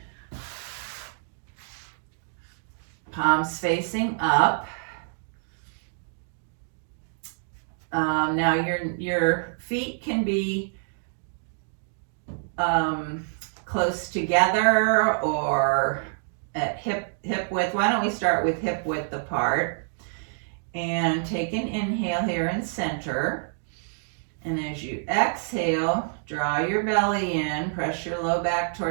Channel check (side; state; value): left; silent; digital silence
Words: Palms facing up. Now your feet can be close together or at hip width. Why don't we start with hip width apart? And take an inhale here in center. And as you exhale, draw your belly in, press your low back